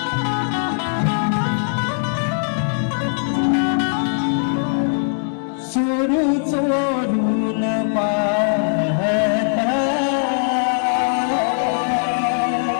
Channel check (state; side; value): silent; right; digital silence